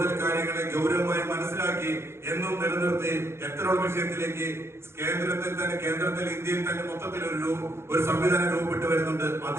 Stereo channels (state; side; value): late; left; 0.12 ms